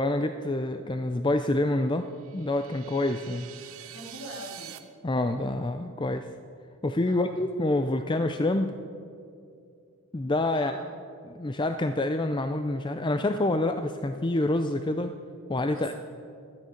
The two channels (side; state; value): both; normal; correlation 0.66